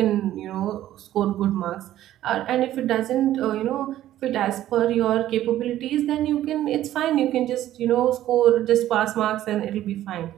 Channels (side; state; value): left; quieter; 13.2 dB